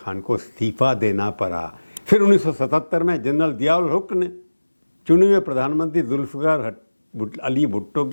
को इस्तीफा देना पड़ा। फिर 1977 में जनरल ज़ियाउल हुक ने चुने हुए प्रधानमंत्री जुल्फ़िकार अली भुट्टो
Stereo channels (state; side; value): inverted; both; correlation -1.00